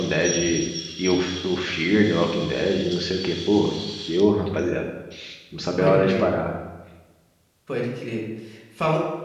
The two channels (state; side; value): identical; both; correlation 1.00